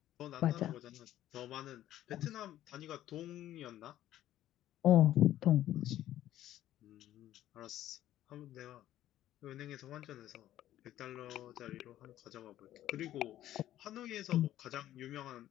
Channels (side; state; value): right; quieter; 13.0 dB